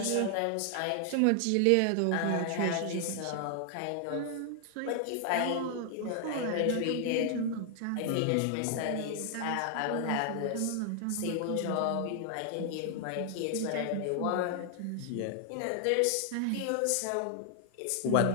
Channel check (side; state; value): both; different; correlation 0.00